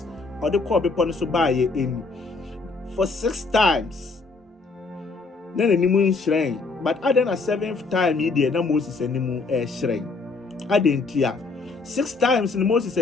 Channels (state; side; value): quieter; right; 4.0 dB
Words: or the call bepon so buy in for 6 times. Then the nimu shrine. But other than a 7th time, he did na Moses and nimu shrine. I didn't hear 6 times in Moses